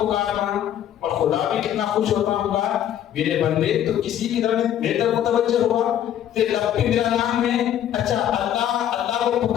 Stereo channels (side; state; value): right; quieter; 10.7 dB